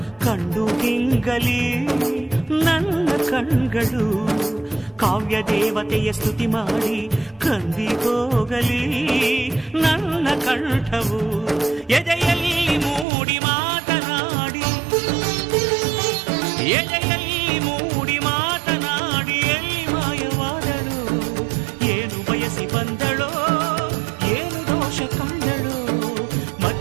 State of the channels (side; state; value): left; drops out; at 13.1 s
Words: ಕಂಡು ಗಿಂಗಲಿ ನನ್ನ ಕಣ್ಗಳು, ಕಾವ್ಯ ದೇವತೆಯ ಸ್ತುತಿ ಮಾಡಿ ಕಂದಿ ಹೋಗಲಿ ನನ್ನ ಕಂಠವು. ಎದೆಯಲ್ಲಿ ಮೂಡಿ ಮಾತನಾಡಿ, ಎದೆಯಲ್ಲಿ ಮೂಡಿ ಮಾತನಾಡಿ ಎಲ್ಲಿ ಮಾಯವಾದಳು, ಏನು ಬಯಸಿ ಬಂದಳೋ, ಏನು ದೋಷ ಕಂಡಳೋ,